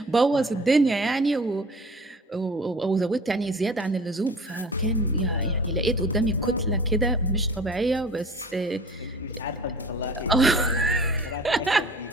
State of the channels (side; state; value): both; normal; correlation 0.44